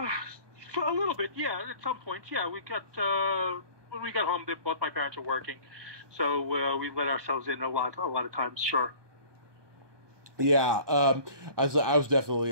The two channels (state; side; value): late; left; 1.2 ms